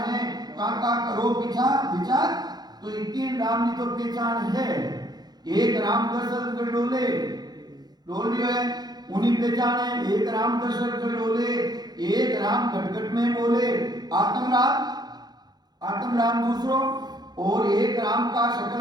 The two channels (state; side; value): late; left; 0.20 ms